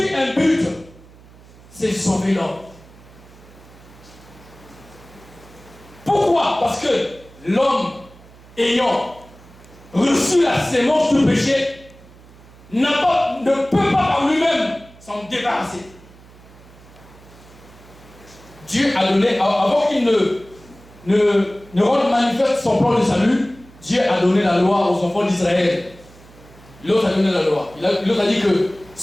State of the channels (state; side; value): noise; right; hum, 23 dB below the sound